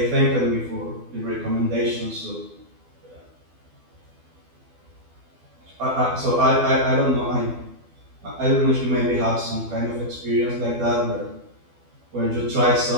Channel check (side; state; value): left; late; 12 ms